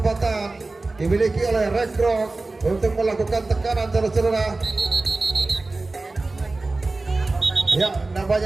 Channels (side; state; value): left; quieter; 3.3 dB